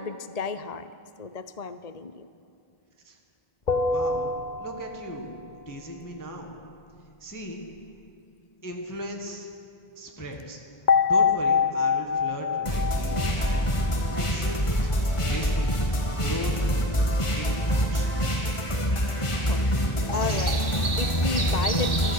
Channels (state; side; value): late; right; 1.4 ms